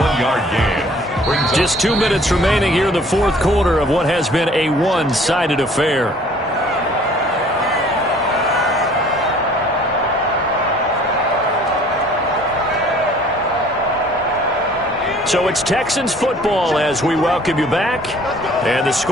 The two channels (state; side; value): normal; both; correlation 0.53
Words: 1-yard gain. Just 2 minutes remaining here in the fourth quarter of what has been a one-sided affair. So it's Texans football as we welcome you back. And the